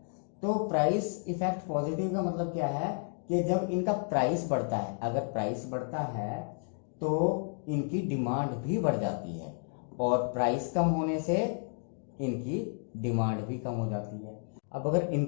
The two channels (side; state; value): right; silent; 57 dB below the other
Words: तो प्राइस इफेक्ट पॉजिटिव का मतलब क्या है कि जब इनका प्राइस बढ़ता है, अगर प्राइस बढ़ता है तो इनकी डिमांड भी बढ़ जाती है, और प्राइस कम होने से इनकी डिमांड भी कम हो जाती है। अब अगर